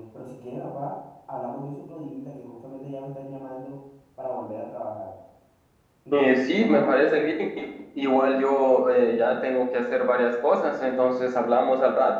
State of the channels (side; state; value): both; identical; correlation 1.00